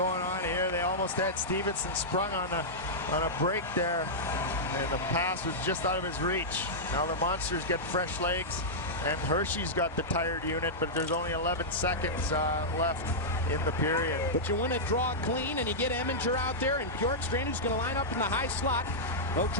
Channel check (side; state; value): both; normal; correlation -0.10